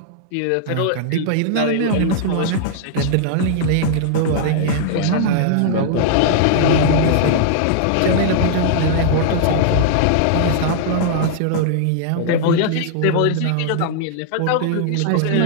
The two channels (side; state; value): both; different; correlation -0.01